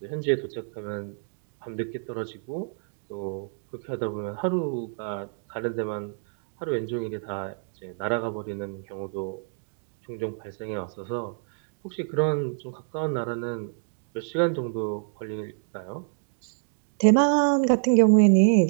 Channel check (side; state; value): left; silent; digital silence